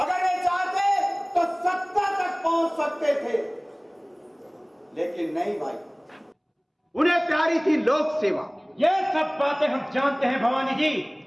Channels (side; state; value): both; identical; correlation 1.00